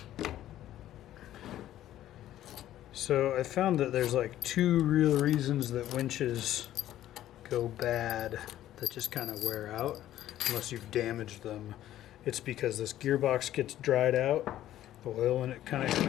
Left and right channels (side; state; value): right; quieter; 13.0 dB